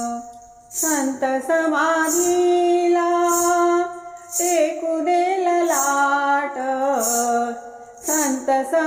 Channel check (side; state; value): both; identical; correlation 1.00